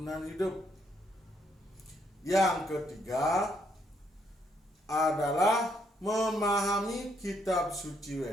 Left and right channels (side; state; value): both; normal; correlation 0.73